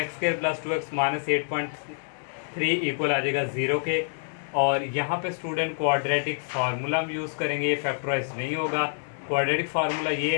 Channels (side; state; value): right; silent; digital silence